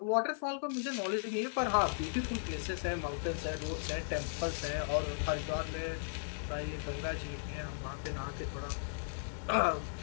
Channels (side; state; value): right; silent; 53 dB below the other